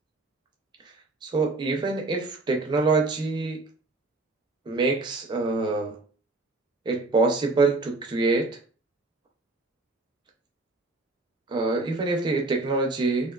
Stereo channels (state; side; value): quieter; left; 3.1 dB